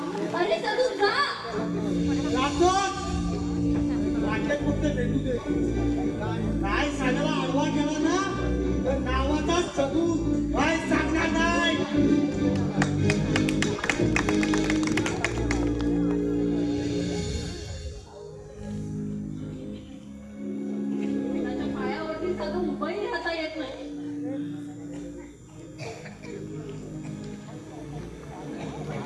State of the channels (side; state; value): both; identical; correlation 1.00